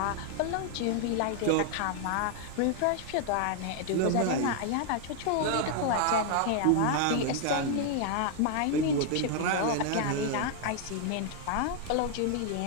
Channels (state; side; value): different; both; correlation 0.00